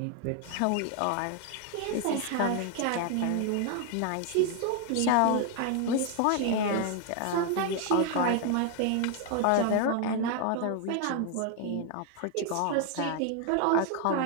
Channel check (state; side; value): different; both; correlation 0.00